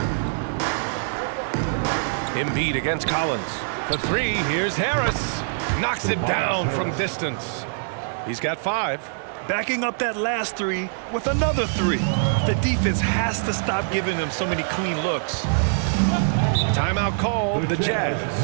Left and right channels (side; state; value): left; silent; digital silence